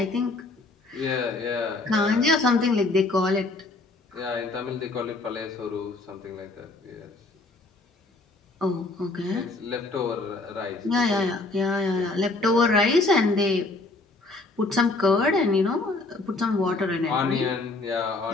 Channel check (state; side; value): quieter; right; 3.2 dB